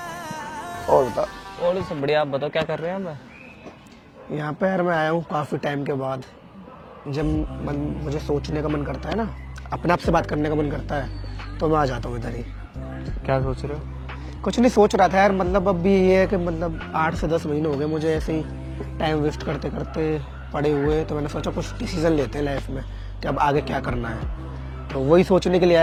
और बताओ। और सब बढ़िया, आप बताओ क्या कर रहे हैं आप? यहाँ पे यार मैं आया हूँ काफी टाइम के बाद। जब मुझे सोचने का मन करता है ना, अपने आप से बात करने का मन करता है, तो मैं आ जाता हूँ इधर ही। क्या सोच रहे हो? कुछ नहीं सोच रहा था यार, मतलब अब भी ये है कि मतलब 8 से 10 महीने हो गए मुझे ऐसे ही टाइम वेस्ट करते करते पड़े हुए। तो मैंने सोचा कुछ डिसीजन लेते हैं लाइफ में कि अब आगे क्या करना है। तो वही सोचने के लिए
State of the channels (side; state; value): both; identical; correlation 1.00